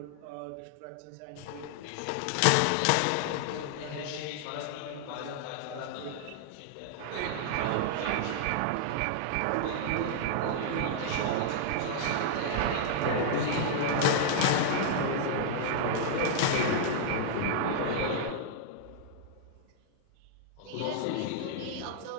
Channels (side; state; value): both; different; correlation -0.01